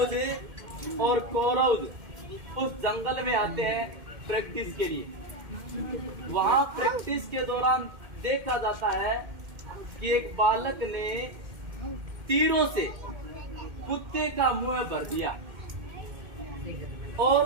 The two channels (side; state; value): left; late; 2.1 ms